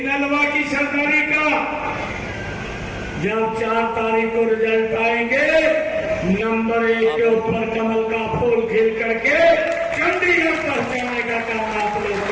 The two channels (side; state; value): both; identical; correlation 1.00